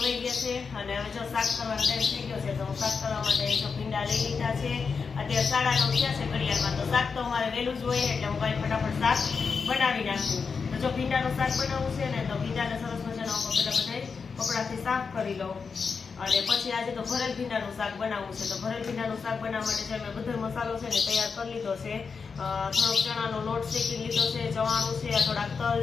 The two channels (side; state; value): right; quieter; 5.3 dB